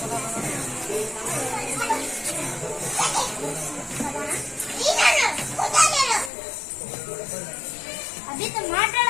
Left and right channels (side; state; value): right; drops out; at 6.3 s